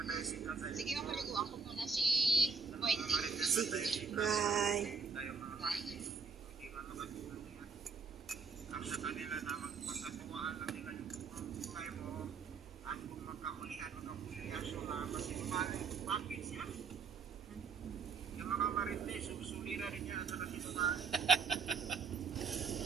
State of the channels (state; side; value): quieter; left; 5.3 dB